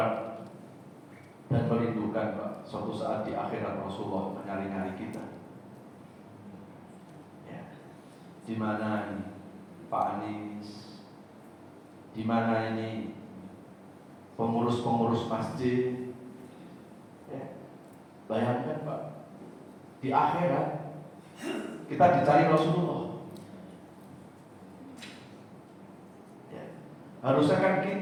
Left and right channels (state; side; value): identical; both; correlation 1.00